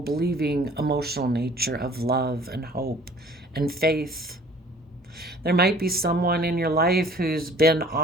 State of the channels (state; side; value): normal; both; correlation 0.52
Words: emotional nature of love and hope and faith. There might be someone in your life who's been